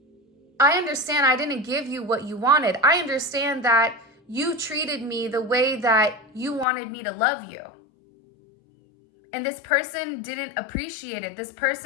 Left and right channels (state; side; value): drops out; right; at 6.7 s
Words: I understand I didn't give you what you wanted. I understand that you treated me the way that you wanted me to love you. And this person didn't appreciate it. This